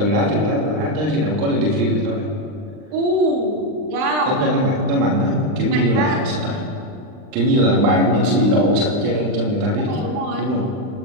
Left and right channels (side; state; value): left; late; 39 ms